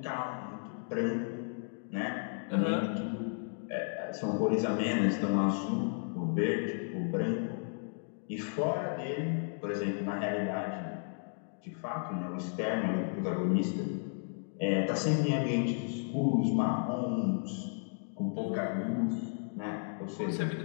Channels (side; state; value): right; silent; 55 dB below the other